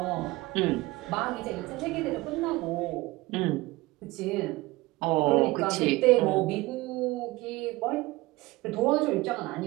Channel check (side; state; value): left; quieter; 20.7 dB